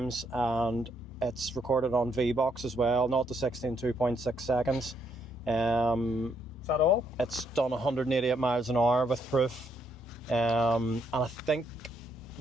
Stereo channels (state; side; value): normal; both; correlation 0.74